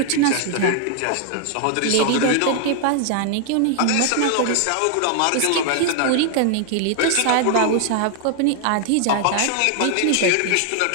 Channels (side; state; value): both; different; correlation 0.00